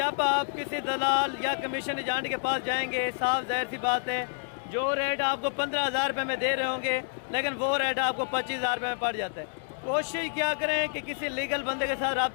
आप किसी दलाल या कमीशन एजेंट के पास जाएंगे, साफ जाहिर सी बात है, जो रेट आपको 15,000 रुपये में दे रहे होंगे, लेकिन वो रेट आपको 25,000 रुपये में पड़ जाता है। कोशिश क्या करें कि किसी लीगल बंदे के साथ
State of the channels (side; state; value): right; silent; 59 dB below the other